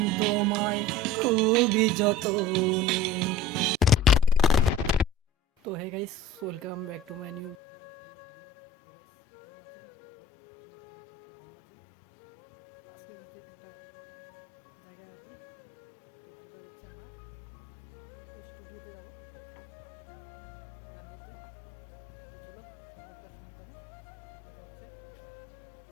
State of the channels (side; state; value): right; drops out; at 7.6 s